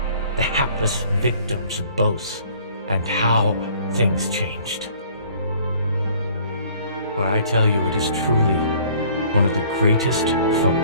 the hapless victims of both, and how things changed. For I tell you, it is truly one of the greatest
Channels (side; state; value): both; inverted; correlation -0.55